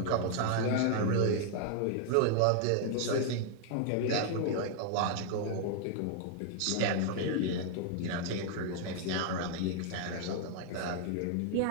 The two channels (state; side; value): different; both; correlation 0.00